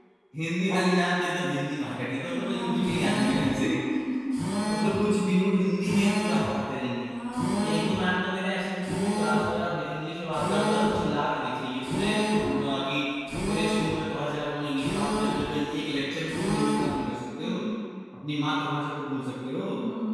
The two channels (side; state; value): both; identical; correlation 1.00